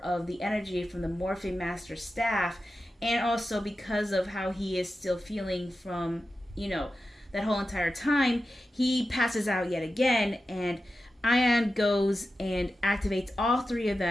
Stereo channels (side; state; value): both; normal; correlation 0.92